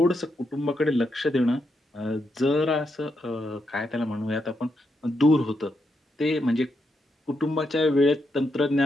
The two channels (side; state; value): both; normal; correlation 0.82